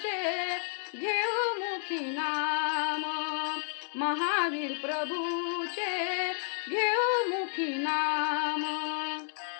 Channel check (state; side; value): silent; right; 57 dB below the other